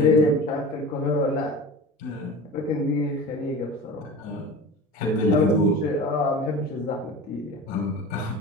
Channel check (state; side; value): normal; both; correlation 0.34